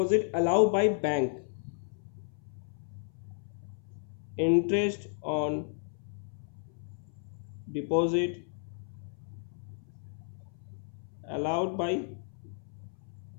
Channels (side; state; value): right; silent; 56 dB below the other